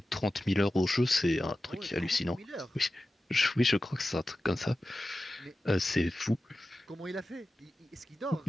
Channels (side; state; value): both; normal; correlation 0.94